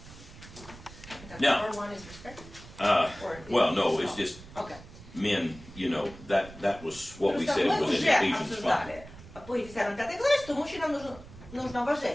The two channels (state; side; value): noise; right; rumble, 17 dB below the sound